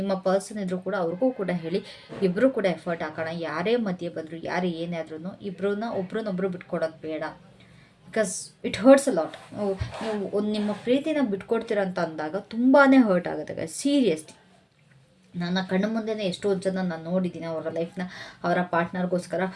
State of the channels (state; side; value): identical; both; correlation 1.00